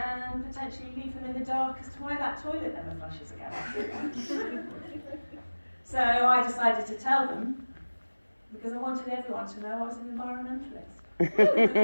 potentially leave them in the dark as to why that toilet never flushes again. So I decided to tell them, because I wanted everyone to know I was an environmentalist.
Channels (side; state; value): both; inverted; correlation -1.00